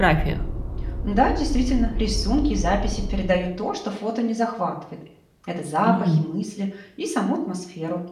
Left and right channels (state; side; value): identical; both; correlation 1.00